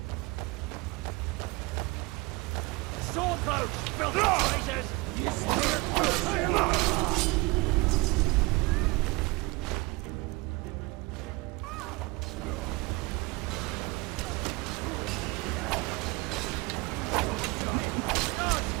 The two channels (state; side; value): quieter; left; 24.2 dB